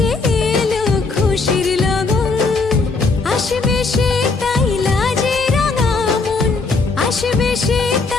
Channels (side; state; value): right; quieter; 4.0 dB